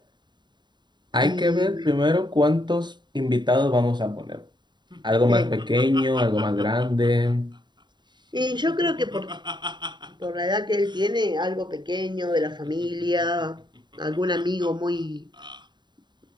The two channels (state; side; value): late; left; 0.22 ms